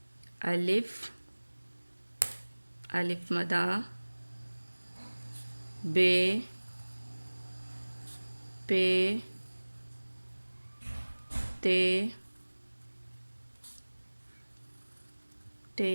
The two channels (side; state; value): both; inverted; correlation -1.00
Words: الف مدہ، بے، پے، تے،